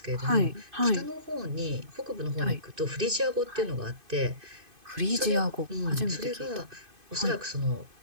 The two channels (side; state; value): left; late; 2.5 ms